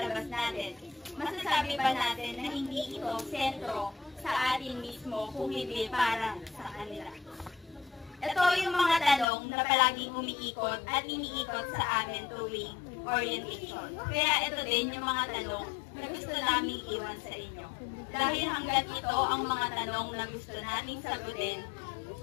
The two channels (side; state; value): right; drops out; at 9.2 s